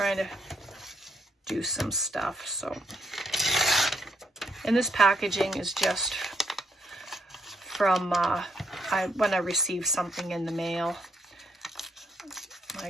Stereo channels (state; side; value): normal; both; correlation 0.73